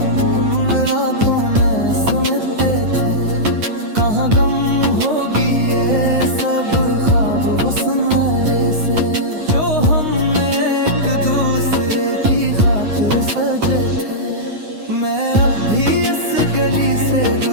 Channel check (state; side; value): late; left; 9.6 ms